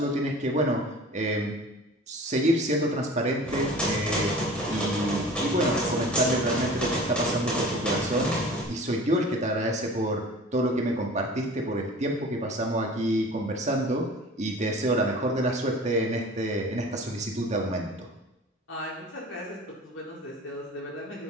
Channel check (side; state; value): both; normal; correlation 0.42